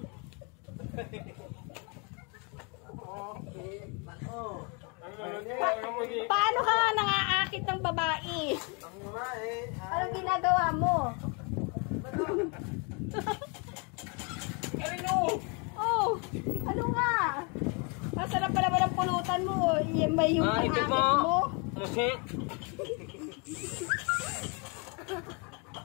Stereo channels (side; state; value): right; quieter; 33.5 dB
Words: Paano ka nga nang-aakit ng babae? Anong ginagawa mo? Oh, ano nga? Masarap pala ba ng pulutan mo? Yan ba yung pang-akit mo?